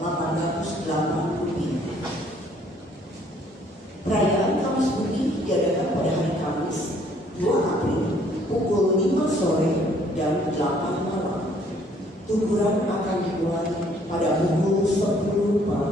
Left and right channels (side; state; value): both; normal; correlation 0.62